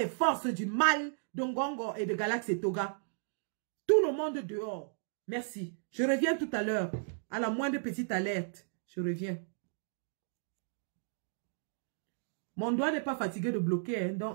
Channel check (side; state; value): left; silent; digital silence